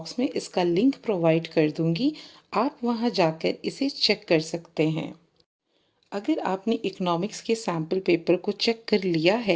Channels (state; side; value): identical; both; correlation 1.00